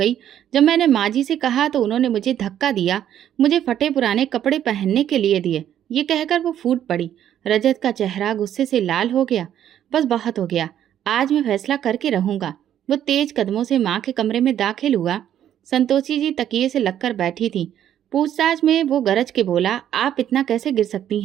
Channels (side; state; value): left; quieter; 10.6 dB